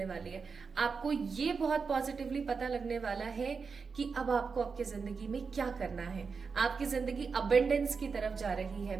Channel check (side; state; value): left; quieter; 5.2 dB